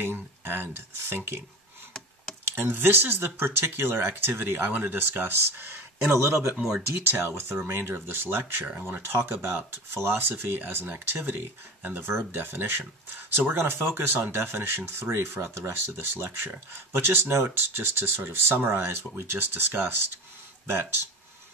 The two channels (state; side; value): normal; both; correlation 0.31